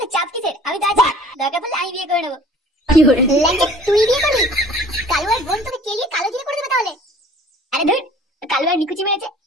চাপ কিসের? আমি তো আছি, দরকার পড়লে আমি বিয়ে করে নেবো। ল্যাংচা, তুই বিয়ে করবি? কালু আর বোন তোকে কেলিয়ে কালো জিরে করে দেবে তাহলে? আরে ধুর, কালু আর নিকুচি মেরেছে,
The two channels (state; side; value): normal; both; correlation 0.50